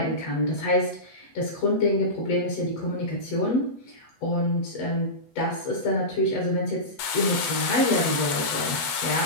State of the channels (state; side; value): late; right; 8.1 ms